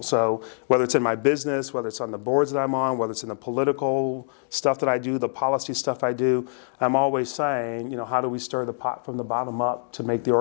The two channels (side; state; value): right; silent; digital silence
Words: So whether it's in my business, whether it's on the boards that I'm on, whether it's in the political stuff that I do, the policy stuff I do, I'm always saying, how do we stir the pot from the bottom up to make the